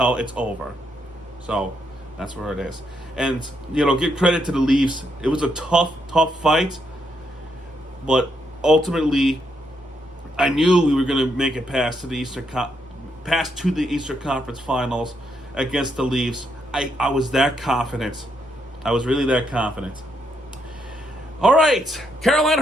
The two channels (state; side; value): normal; both; correlation 0.77